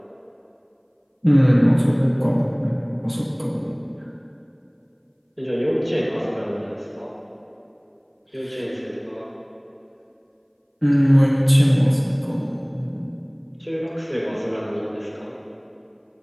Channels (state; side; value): identical; both; correlation 1.00